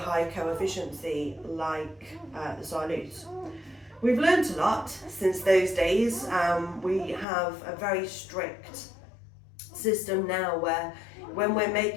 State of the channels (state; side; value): drops out; right; at 7.2 s